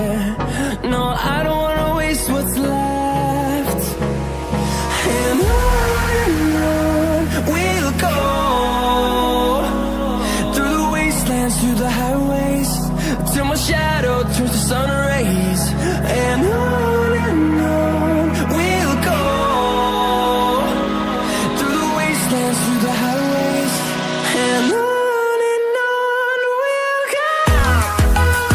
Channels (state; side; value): identical; both; correlation 1.00